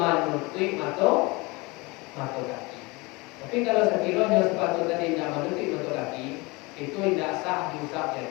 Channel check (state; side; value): quieter; right; 25.2 dB